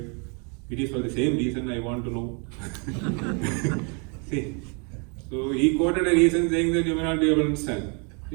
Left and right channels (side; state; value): left; quieter; 35.6 dB